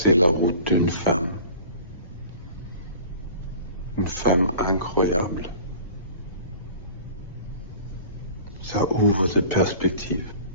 la route d'une femme. Une femme incroyable. Ça ouvre des perspectives.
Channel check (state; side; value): inverted; both; correlation -0.43